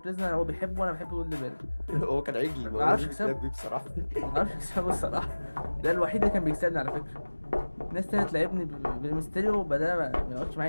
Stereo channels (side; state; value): both; inverted; correlation -1.00